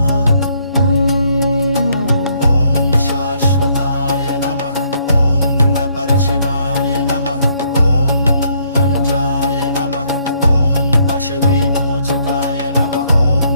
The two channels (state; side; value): inverted; both; correlation -0.69